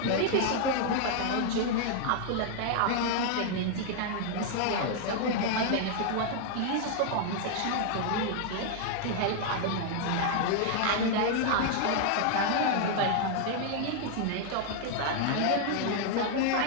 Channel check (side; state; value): both; different; correlation 0.00